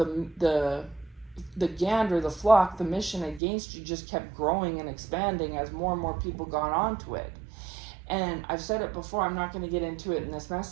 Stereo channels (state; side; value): drops out; left; at 3.4 s